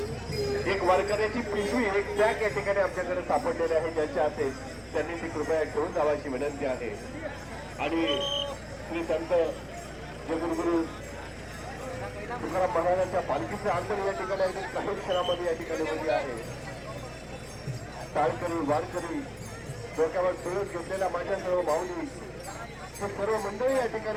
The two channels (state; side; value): identical; both; correlation 1.00